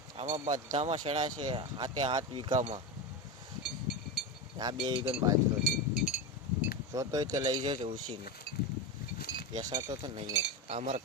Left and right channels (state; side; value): normal; both; correlation 0.18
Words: આમાં બધામાં શેણા છે. હાથ વીઘામાં આ 2 વીઘાનો બાજરો છે. જોતોય તે લઈ જજો ઉછીને. બેસાતો તો નહીં. આ અમારા